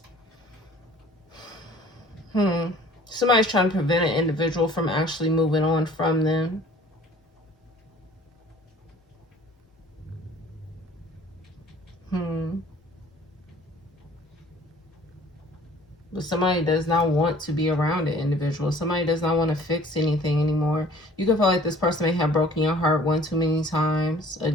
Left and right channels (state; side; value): normal; both; correlation 0.52